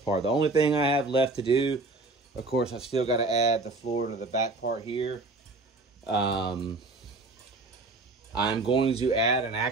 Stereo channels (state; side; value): quieter; left; 3.2 dB